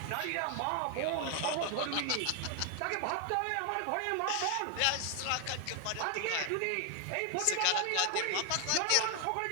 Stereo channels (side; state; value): both; different; correlation 0.00